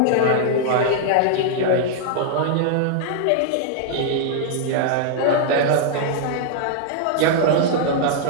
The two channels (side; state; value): both; different; correlation -0.01